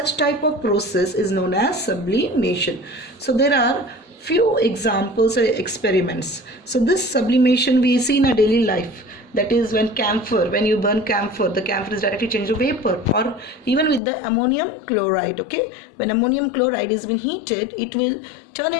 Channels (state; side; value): drops out; right; at 14.0 s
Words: type of process is known as sublimation. So there are few examples or experiments. So this sublimation we see in our daily life. That is when you burn camphor, the camphor is directly changed to vapor, or even with the ammonium chloride. Okay, when ammonium chloride has been heated, it will turn